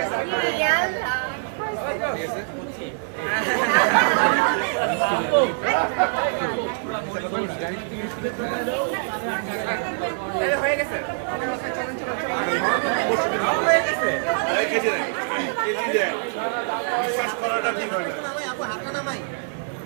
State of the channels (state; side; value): silent; left; 63 dB below the other